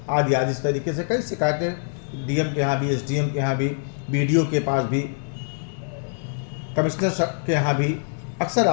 आदि आदि। इस तरीके से कई शिकायतें डीएम के यहाँ भी, एसडीएम के यहाँ भी, बीडीओ के पास भी, कमिश्नर के यहाँ भी अक्सर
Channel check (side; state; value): right; silent; digital silence